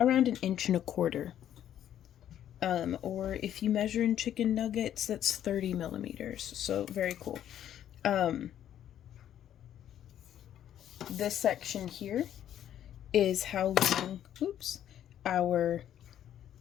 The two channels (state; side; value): quieter; right; 10.8 dB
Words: around 1.25 inches. Or if you measure in chicken nuggets, that's 30 millimeters. So very cool. This section here is how long, oops, our